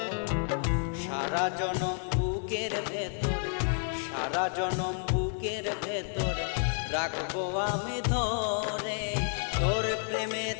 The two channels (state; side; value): silent; right; 57 dB below the other